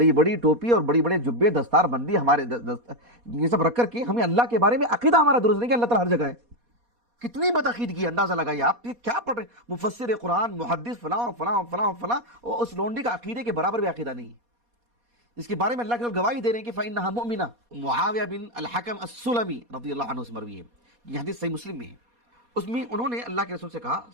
بڑی ٹوپی اور بڑی بڑے جبے، دستار بندی ہمارے یہ سب رکھ کر کے ہمیں اللہ کے بارے میں عقیدہ ہمارا درست نہیں کہ اللہ تعالیٰ ہر جگہ ہے. کتنی بدعقیدگی ہے، اندازہ لگائیے آپ یہ کیا پڑھ رہے ہیں. مفسر قرآن، محدث، فلاں فلاں فلاں فلاں، اور اس لونڈی کا عقیدے کے برابر بھی عقیدہ نہیں ہے. اس کے بارے میں اللہ کے گواہی دے رہے ہیں کہ فَإِنَّهَا مُؤْمِنَةٌ. معاویہ بن الحکم السلمی رضی اللہ عنہ سے مروی ہے، یہ حدیث صحیح مسلم میں ہے. اس میں انہوں نے اللہ کے رسول سے کہا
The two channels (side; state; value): left; late; 4.2 ms